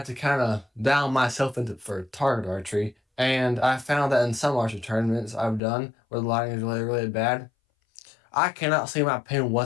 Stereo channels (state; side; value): drops out; right; at 5.6 s